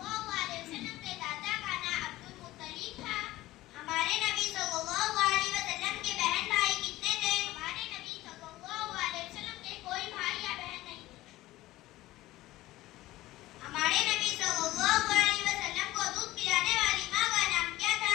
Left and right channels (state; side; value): quieter; right; 17.0 dB